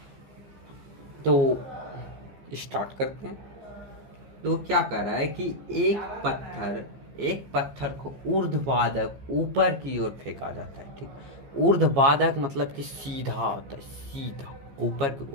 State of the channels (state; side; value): late; left; 15 ms